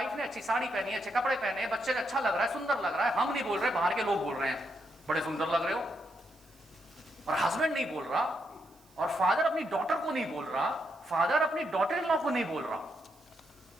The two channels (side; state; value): right; noise; hiss, 30 dB below the sound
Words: ने अच्छी साड़ी पहनी है, अच्छे कपड़े पहने हैं, बच्चे अच्छा लग रहा है, सुंदर लग रहा है, हम नहीं बोल रहे, बाहर के लोग बोल रहे हैं बड़े सुंदर लग रहे हो, और हस्बैंड नहीं बोल रहा, और फादर अपनी डॉटर को नहीं बोल रहा, फादर अपनी डॉटर इन लॉ को नहीं बोल रहा,